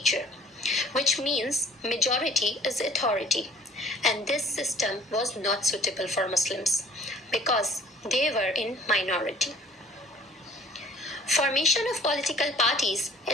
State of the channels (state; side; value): normal; both; correlation 0.51